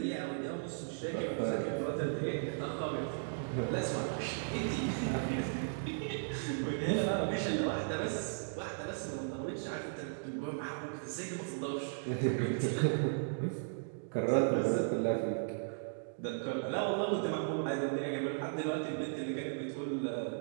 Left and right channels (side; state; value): left; silent; digital silence